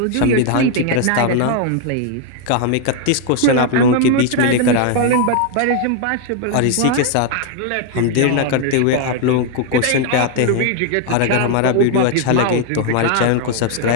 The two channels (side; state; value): both; different; correlation 0.01